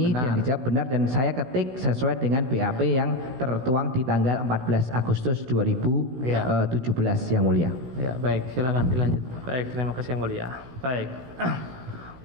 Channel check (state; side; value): late; left; 16 ms